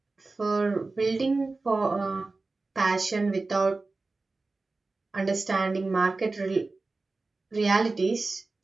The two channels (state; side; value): quieter; left; 3.5 dB